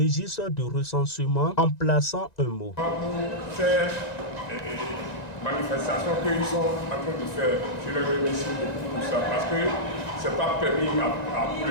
de recensement en plaçant un mot. Pour faire manifestation qu'ils sont en train de faire, je les remercie beaucoup pour ça, parce que ce n'est pas permis à tout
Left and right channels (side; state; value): right; late; 1.9 ms